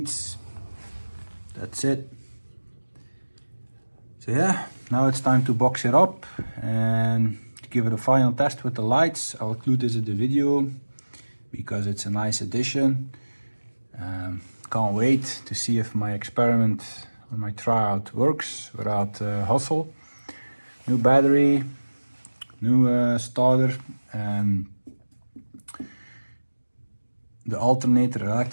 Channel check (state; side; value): inverted; both; correlation -1.00